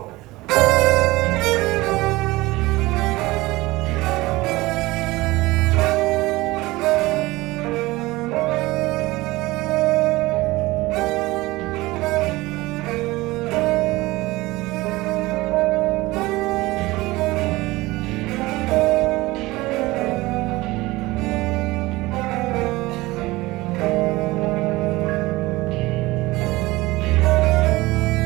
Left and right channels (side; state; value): left; quieter; 20.2 dB